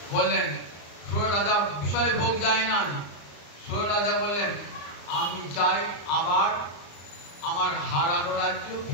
বললেন সুর রাজা বিষয় ভোগ যায় না। সুর রাজা বললেন আমি চাই আবার আমার হারানো রাজ্য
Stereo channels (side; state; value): right; late; 34 ms